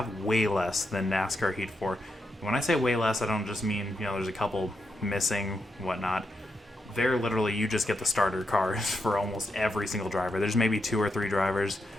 way less than NASCAR Heat 4. When I say way less, I don't just mean, there's a couple missing, whatnot. They're literally, you just get the starter cars for almost every single driver. There's maybe 2 or 3 drivers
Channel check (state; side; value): normal; both; correlation 0.84